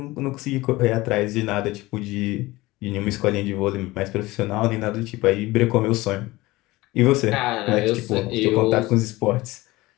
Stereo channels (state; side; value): quieter; right; 19.8 dB